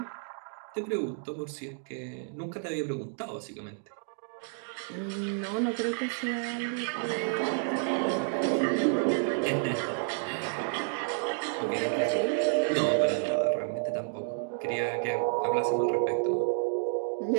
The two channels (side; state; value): left; silent; 58 dB below the other